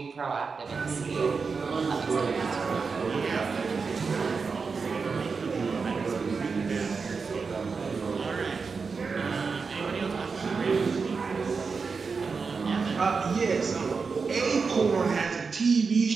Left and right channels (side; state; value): left; quieter; 5.0 dB